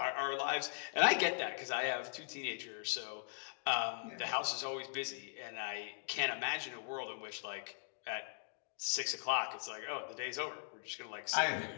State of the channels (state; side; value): quieter; right; 36.3 dB